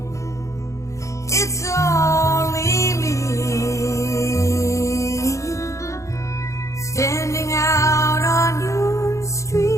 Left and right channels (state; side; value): late; right; 0.15 ms